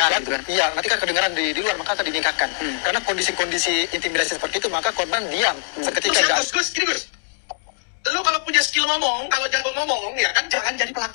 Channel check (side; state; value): right; silent; digital silence